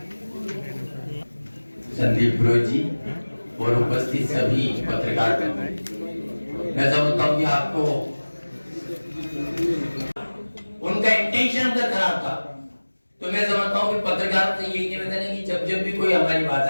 संदीप पुरोहित जी और उपस्थित सभी पत्रकार मित्र, मैं समझता हूँ कि आपको उनका इंटेंशन उधर खराब था, तो मैं समझता हूँ कि पत्रकार से यही निवेदन है कि जब जब भी कोई हमारी बात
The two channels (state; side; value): inverted; both; correlation -1.00